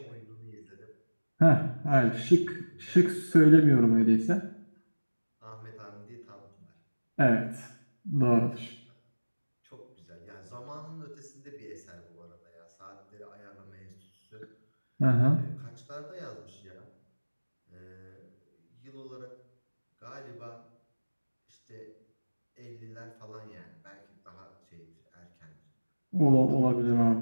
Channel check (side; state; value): both; inverted; correlation -1.00